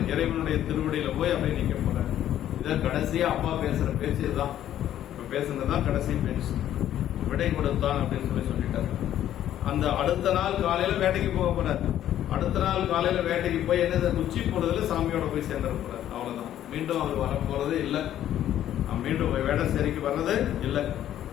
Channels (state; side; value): quieter; right; 11.6 dB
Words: இறைவனுடைய திருவடியில போய் அப்படியே நிக்க போறாரு. இதான் கடைசியா அப்பா பேசுற பேச்சு இதுதான். பேசுனதுதான் கடைசி பேச்சு. விடை கொடுத்தான் அப்படின்னு சொல்லிட்டாரு. அந்த அடுத்த நாள் காலையில வேட்டைக்கு போக போறாரு. அடுத்த நாள் காலையில வேட்டைக்கு போய் என்ன உச்சி பொழுதுல சாமியோட போய் சேர்ந்துட போறாரு. அவ்வளவுதான். மீண்டும் அவர் வர போறது இல்லை. மீண்டும் வேடசேரிக்கு வர்றது இல்லை.